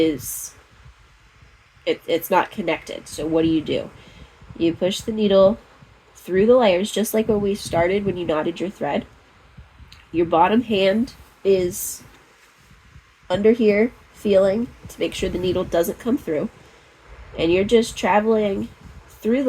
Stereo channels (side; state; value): both; identical; correlation 1.00